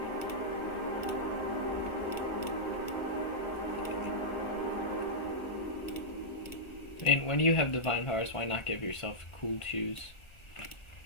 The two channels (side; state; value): right; late; 1.3 ms